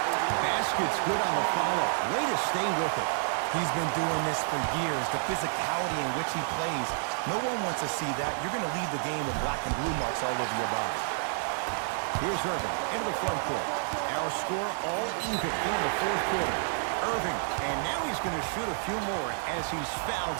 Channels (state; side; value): silent; left; 58 dB below the other